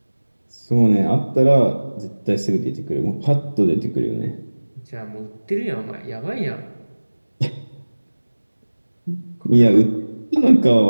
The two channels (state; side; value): inverted; both; correlation -1.00